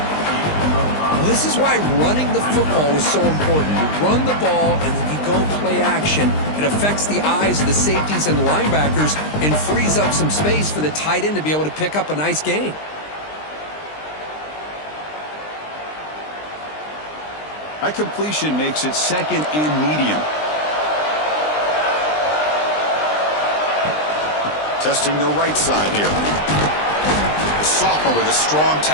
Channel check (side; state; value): right; late; 20 ms